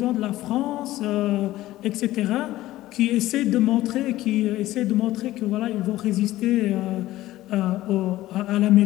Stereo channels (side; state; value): right; quieter; 15.8 dB